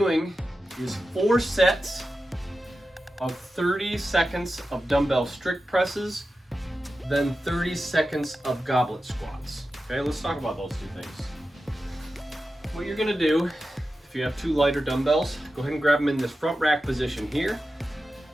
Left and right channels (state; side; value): normal; both; correlation 0.92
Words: is 4 sets of 30 seconds of dumbbell strict presses, then 30 seconds of goblet squats. Okay, let's talk about those two things. What you're gonna do, if you have 2 lighter dumbbells, go ahead and grab them in this front rack position here.